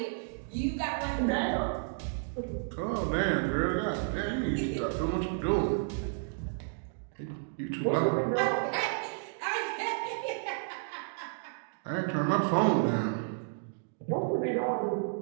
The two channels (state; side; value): silent; left; digital silence